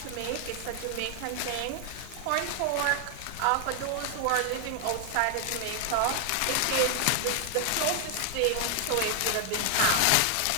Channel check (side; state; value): both; different; correlation 0.00